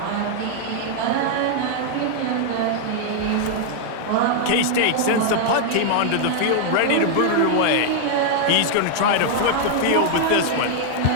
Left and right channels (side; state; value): both; different; correlation 0.00